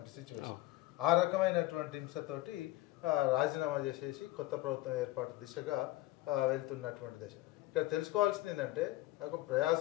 సిచ్యువేషన్. ఆ రకమైనటువంటి హింసతోటి రాజీనామా చేసేసి కొత్త ప్రభుత్వం ఏర్పాటు దిశగా వెళ్తున్నటువంటి దశ. ఇక్కడ తెలుసుకోవాల్సింది ఏంటంటే, ఒక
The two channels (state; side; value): quieter; right; 17.4 dB